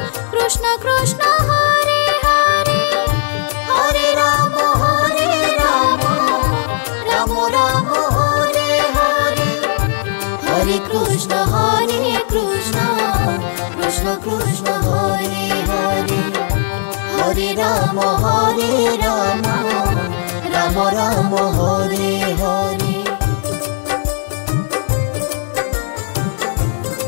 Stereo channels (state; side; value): silent; right; digital silence